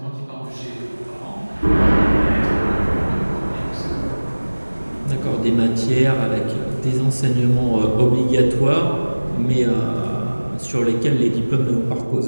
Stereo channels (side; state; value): both; inverted; correlation -1.00